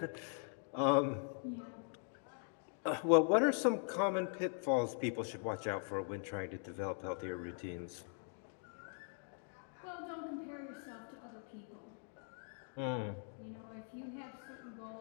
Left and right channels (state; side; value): silent; right; 50 dB below the other